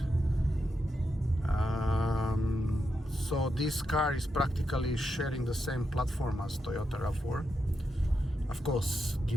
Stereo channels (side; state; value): both; normal; correlation 0.85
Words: So this car is practically sharing the same platform as Toyota RAV4. Of course,